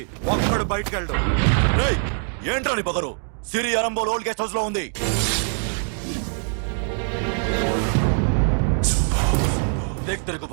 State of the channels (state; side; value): silent; left; 58 dB below the other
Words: ఒక్కడు బయటకు వెళ్ళడు. రేయ్ ఏంట్రా నీ పగరు సిరి అరంబోల్ ఓల్డ్ గెస్ట్ హౌస్ లో ఉంది देख तेरे को